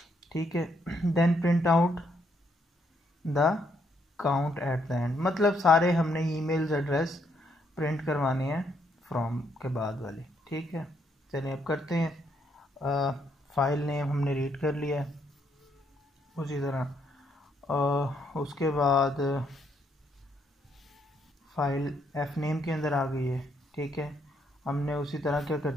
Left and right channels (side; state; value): both; normal; correlation 0.73